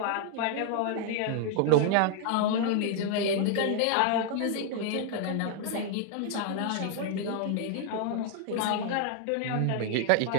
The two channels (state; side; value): different; both; correlation 0.00